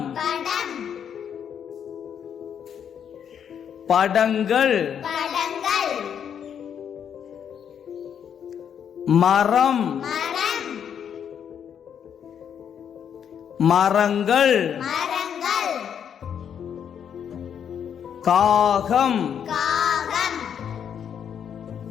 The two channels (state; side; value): quieter; right; 8.3 dB